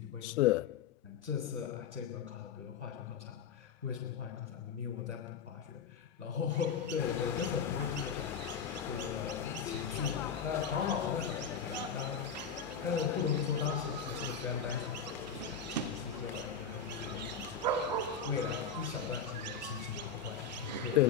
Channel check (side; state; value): right; quieter; 6.3 dB